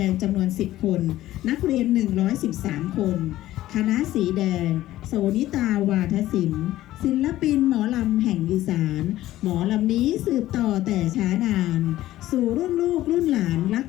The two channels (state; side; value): quieter; right; 14.9 dB